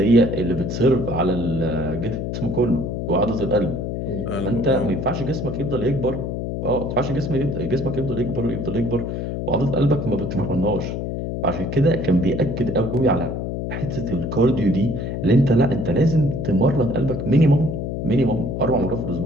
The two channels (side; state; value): left; noise; hum, 4 dB below the sound